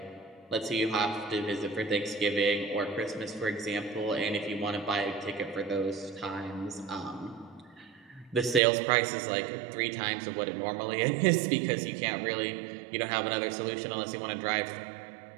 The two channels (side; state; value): left; drops out; at 8.6 s